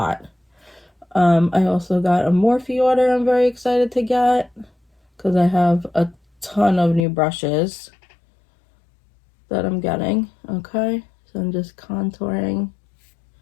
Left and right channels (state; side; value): drops out; right; at 7.1 s